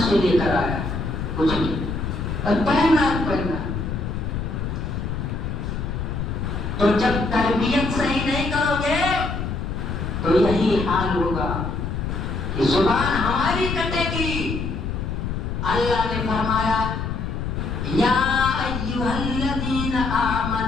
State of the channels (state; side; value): noise; left; rumble, 3 dB below the sound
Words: سے لے کر آیا، کچھ نہیں، پہنا۔ تو جب تربیت صحیح نہیں کرو گے تو یہی حال ہوگا کہ زبان ہماری کٹے گی۔ اللہ نے فرمایا یا ایھا الذین